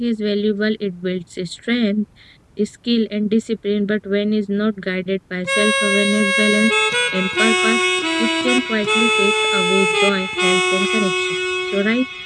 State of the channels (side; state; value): both; identical; correlation 1.00